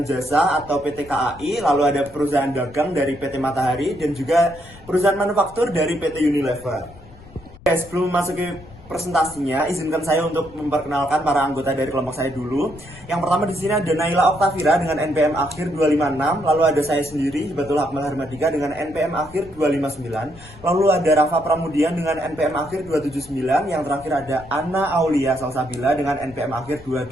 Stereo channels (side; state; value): left; noise; rumble, 21 dB below the sound